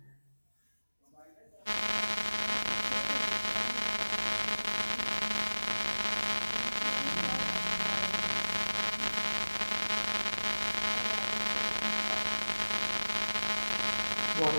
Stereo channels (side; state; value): both; inverted; correlation -1.00